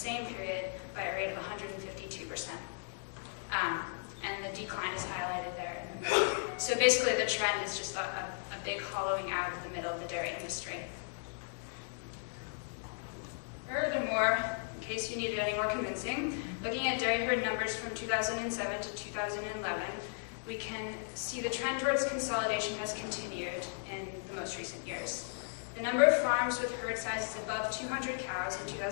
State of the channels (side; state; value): right; silent; digital silence